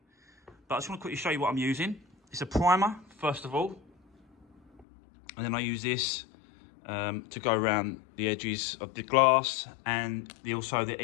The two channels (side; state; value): right; drops out; at 4.9 s